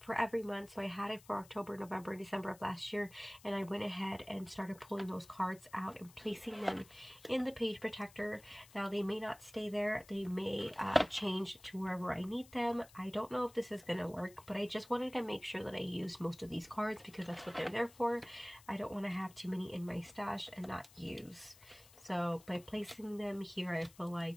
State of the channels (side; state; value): left; noise; hiss, 23 dB below the sound